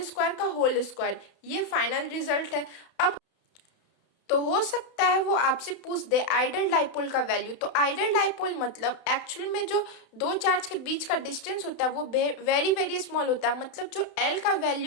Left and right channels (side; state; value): right; late; 31 ms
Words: square का होल स्क्वायर। ये फाइनल रिजल्ट है। अब तो हो सकता है वो आपसे पूछ दे आइडल डाइपोल का वैल्यू। तो आइडल डाइपोल मतलब एक्चुअल में जो दो चार्ज के बीच का डिस्टेंस होता है वो वेरी वेरी स्मॉल होता है, मतलब जो L का